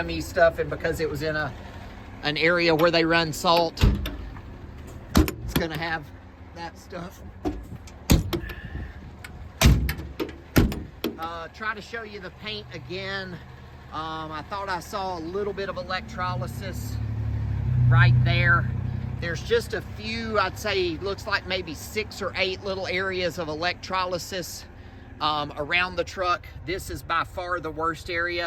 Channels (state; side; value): identical; both; correlation 1.00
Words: stuff, and because it was in an area where they run salt, it's gonna have that stuff. Try to show you the paint again. I thought I saw a little bit of electrolysis right there. There's just a few, I'd say, looks like maybe 6 or 8 little areas of electrolysis around the truck. This is by far the worst